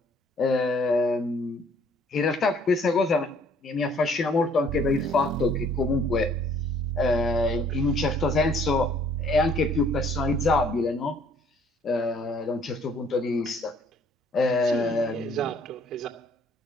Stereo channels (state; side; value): normal; both; correlation 0.59